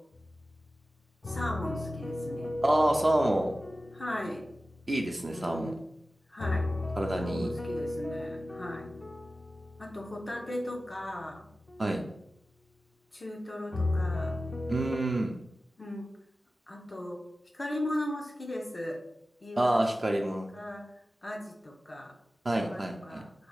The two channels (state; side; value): normal; both; correlation 0.95